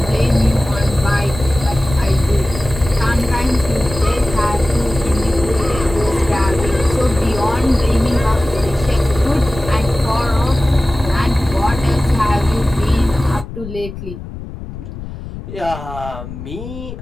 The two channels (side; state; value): left; noise; rumble, 11 dB below the sound